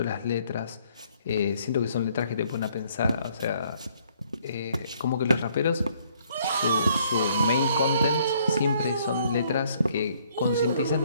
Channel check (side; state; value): both; inverted; correlation -0.65